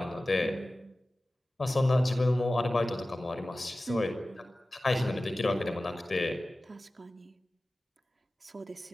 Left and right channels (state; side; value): normal; both; correlation 0.96